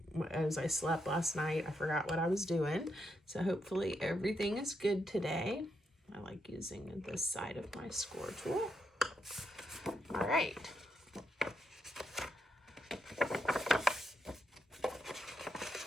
as I slept last night, I forgot what I was doing. So hopefully everything is good today. I like using this side of my score tool. All right.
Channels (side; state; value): both; normal; correlation 0.81